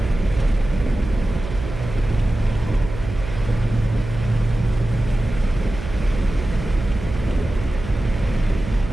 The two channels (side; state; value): right; noise; hum, 9 dB below the sound